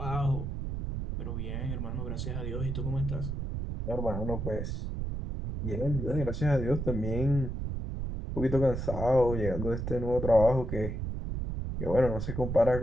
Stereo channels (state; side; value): noise; right; rumble, 3 dB below the sound